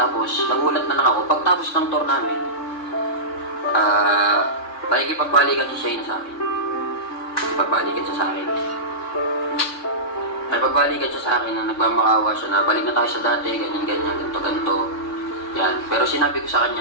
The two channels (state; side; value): late; right; 3.6 ms